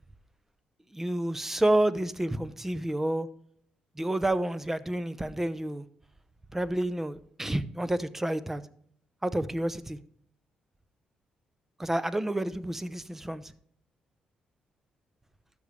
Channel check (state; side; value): normal; both; correlation 0.97